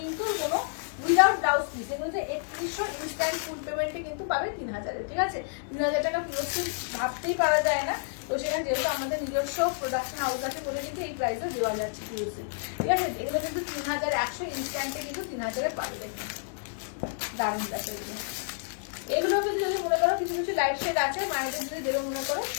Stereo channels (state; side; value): silent; right; digital silence